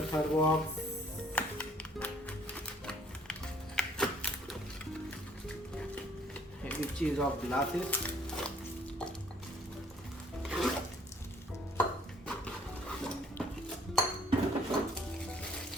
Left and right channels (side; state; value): both; normal; correlation 0.59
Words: third box. Which is of glasses.